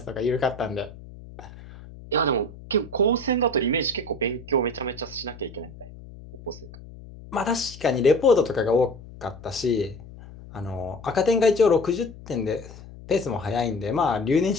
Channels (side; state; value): left; noise; hum, 17 dB below the sound